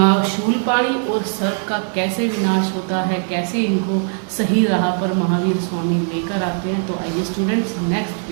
पाणी और सर्प का कैसे विनाश होता है, कैसे इनको सही राह पर महावीर स्वामी लेकर आते हैं। तो आइए स्टूडेंट्स नेक्स्ट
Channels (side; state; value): left; silent; 56 dB below the other